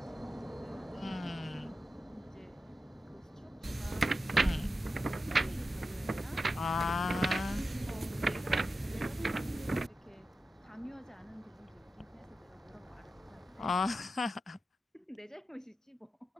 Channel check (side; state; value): both; normal; correlation 0.91